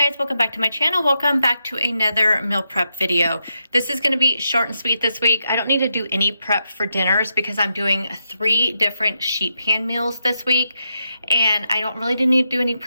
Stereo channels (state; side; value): inverted; both; correlation -0.84